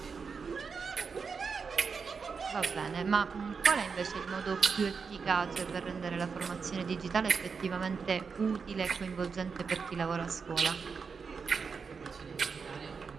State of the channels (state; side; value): quieter; left; 5.4 dB